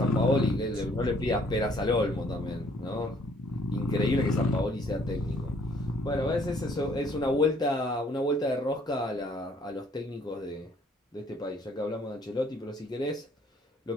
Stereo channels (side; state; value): both; normal; correlation 0.61